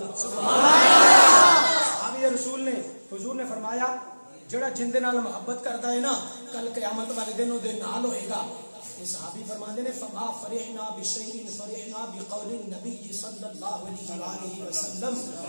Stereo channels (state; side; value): inverted; both; correlation -1.00